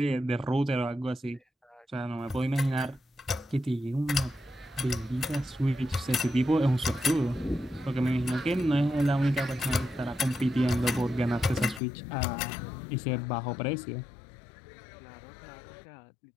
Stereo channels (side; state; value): right; drops out; at 11.8 s